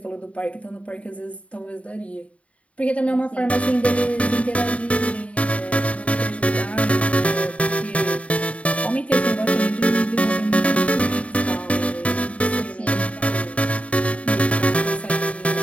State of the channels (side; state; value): right; late; 0.065 ms